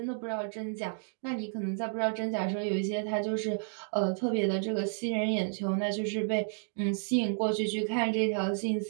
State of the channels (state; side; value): silent; left; digital silence